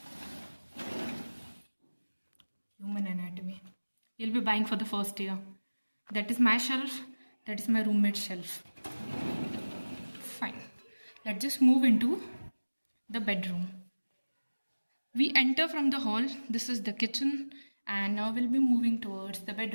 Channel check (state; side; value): inverted; both; correlation -1.00